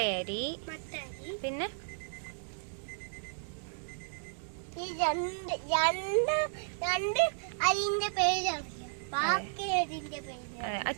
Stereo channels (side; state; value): left; silent; digital silence